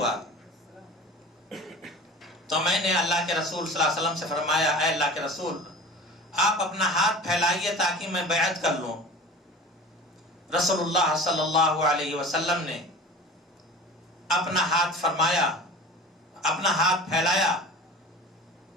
تو میں نے اللہ کے رسول صلی اللہ علیہ وسلم سے فرمایا اے اللہ کے رسول، آپ اپنا ہاتھ پھیلائیے تاکہ میں بیعت کر لوں۔ رسول اللہ صلی اللہ علیہ وسلم نے اپنا ہاتھ فرمایا، اپنا ہاتھ پھیلایا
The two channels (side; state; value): both; normal; correlation 0.38